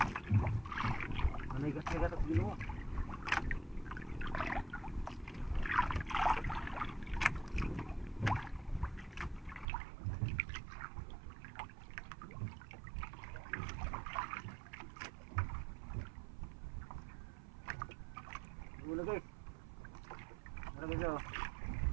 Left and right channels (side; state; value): left; drops out; at 9.7 s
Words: Nagat at ginawa. Wala guys. Wala guys.